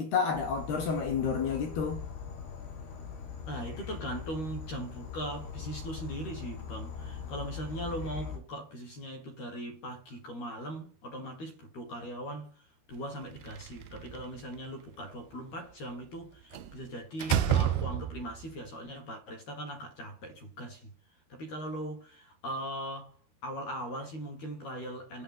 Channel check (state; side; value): late; right; 12 ms